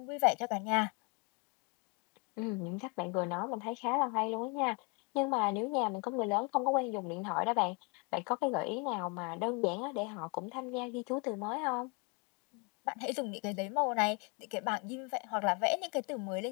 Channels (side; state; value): right; quieter; 31.1 dB